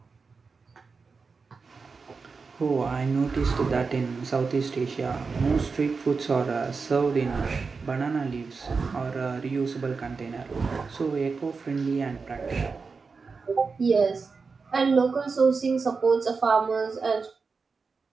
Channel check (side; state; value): left; quieter; 4.7 dB